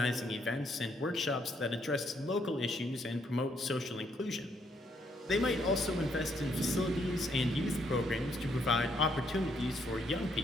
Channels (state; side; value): normal; both; correlation 0.72